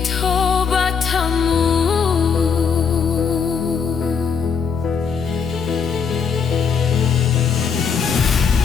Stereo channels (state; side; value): quieter; right; 6.1 dB